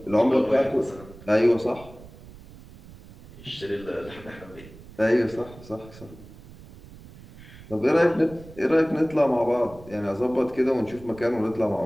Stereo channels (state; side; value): noise; right; rumble, 19 dB below the sound